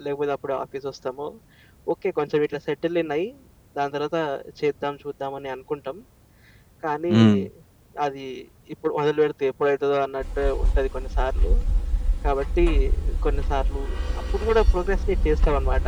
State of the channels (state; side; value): identical; both; correlation 1.00